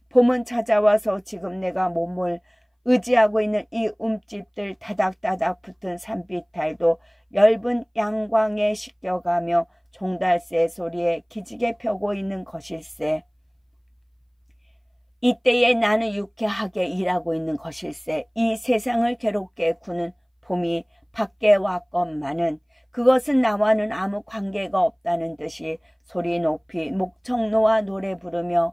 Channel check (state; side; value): identical; both; correlation 1.00